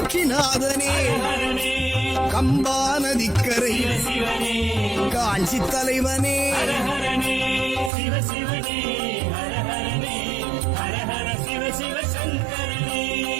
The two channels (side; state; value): left; drops out; at 7.9 s